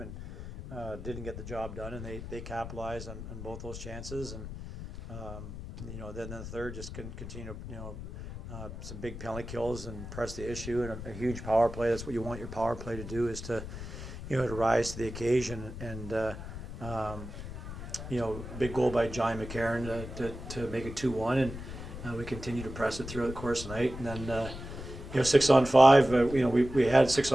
and didn't get the job done, and they capitalized on both those chances, and then the third just continue some big penalty kills and press the issue and a huge power play. That's what you want your power play to do, is to to rise to the occasion, and big goal by John McCarron to make it 2-1, and we continue to press it throughout the course of the night. And then 6-on-5, we had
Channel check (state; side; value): noise; left; rumble, 10 dB below the sound